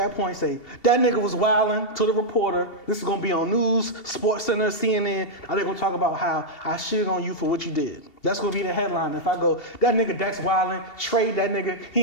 point say, that nigga was wilding to the reporter. This is going to be on news, Sports Center, CNN. Are they going to talk about how I shitted on you for what you did? That's going to be the headline. If I go, that nigga Dex wilding, trade that nigga,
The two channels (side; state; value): right; late; 2.7 ms